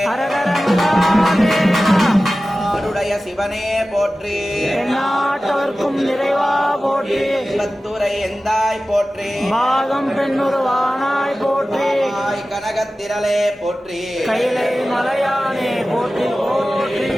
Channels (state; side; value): normal; both; correlation 0.95